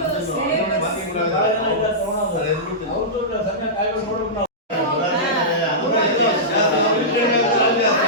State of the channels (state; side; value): normal; both; correlation -0.15